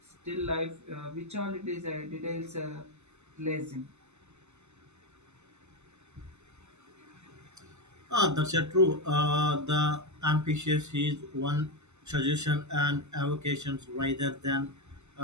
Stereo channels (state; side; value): late; left; 0.82 ms